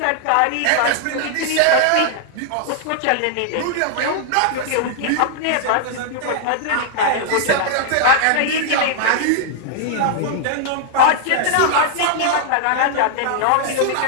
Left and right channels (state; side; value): different; both; correlation -0.01